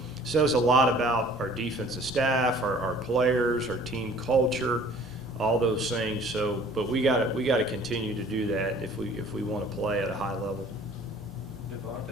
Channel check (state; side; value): normal; both; correlation 0.52